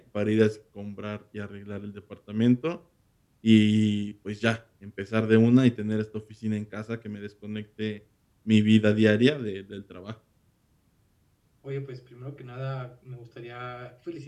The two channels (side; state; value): both; identical; correlation 1.00